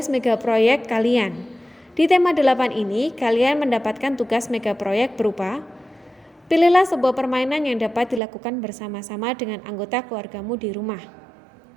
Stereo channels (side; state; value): left; drops out; at 8.2 s